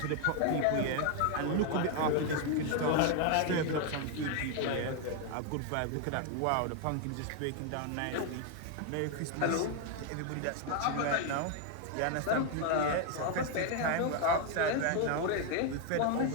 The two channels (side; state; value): both; different; correlation 0.01